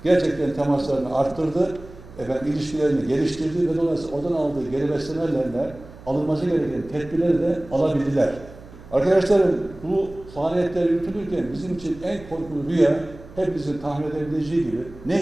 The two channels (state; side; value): noise; right; hum, 19 dB below the sound